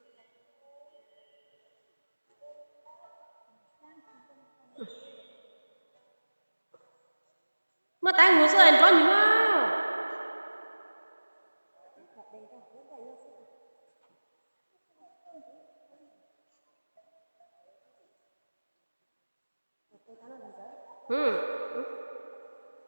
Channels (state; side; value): inverted; both; correlation -1.00